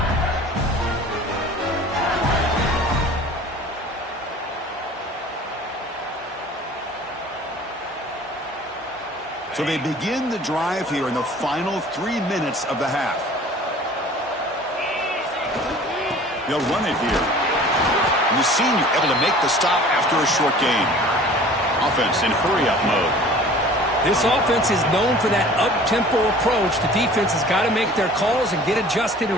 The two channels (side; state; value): both; normal; correlation 0.46